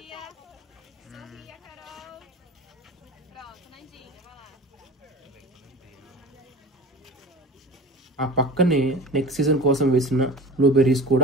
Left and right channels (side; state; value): both; normal; correlation 0.35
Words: ఆ పక్కనే నెక్స్ట్ సీజన్ కోసం వేసిన బ్లూబెర్రీస్